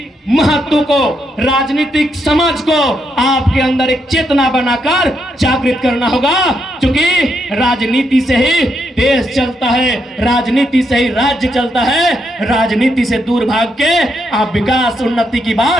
महत्व को, राजनीतिक समझ को आपके अंदर एक चेतना बनाकर जागृत करना होगा। क्योंकि राजनीति से ही देश चलता है, राजनीति से ही राज्य चलता है। राजनीति से दूर भाग के आप विकास उन्नति की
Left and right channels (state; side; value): normal; both; correlation 0.79